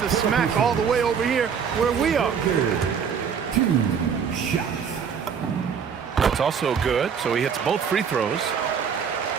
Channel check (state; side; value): quieter; left; 6.9 dB